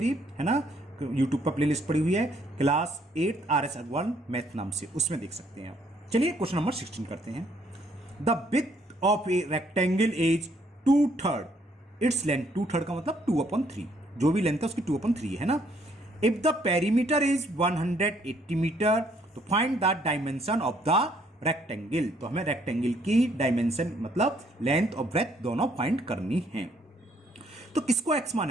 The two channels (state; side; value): normal; both; correlation 0.67